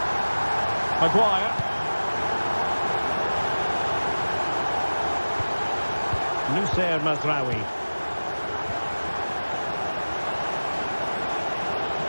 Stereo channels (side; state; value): both; inverted; correlation -1.00